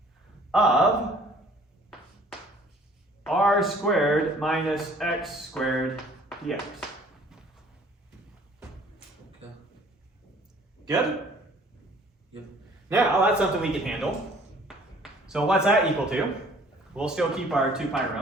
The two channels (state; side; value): normal; both; correlation 0.55